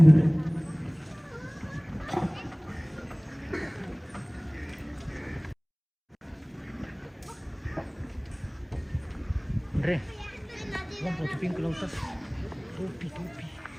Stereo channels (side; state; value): both; identical; correlation 1.00